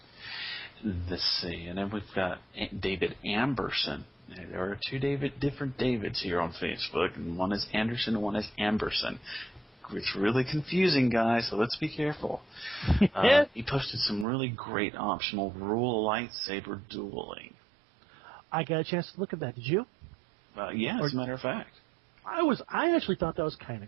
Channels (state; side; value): drops out; left; at 14.2 s